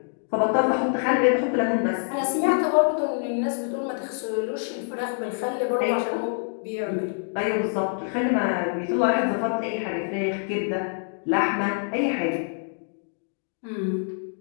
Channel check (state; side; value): silent; right; digital silence